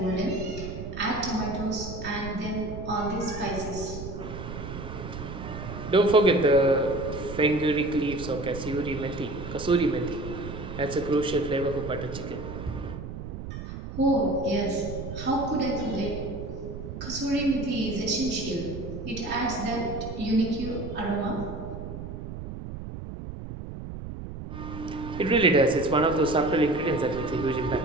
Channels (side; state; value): right; noise; rumble, 9 dB below the sound